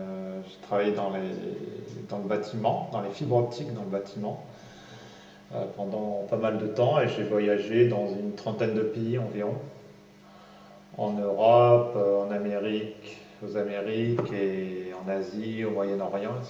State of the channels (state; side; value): identical; both; correlation 1.00